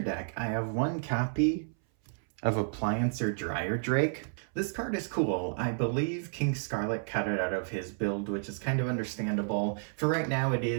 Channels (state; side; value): silent; left; 57 dB below the other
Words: deck, I have 1 copy of Appliancer Dryer Drake. This card is cool. I believe King Scarlet cut it out of his build, which is kind of understandable. For right now, it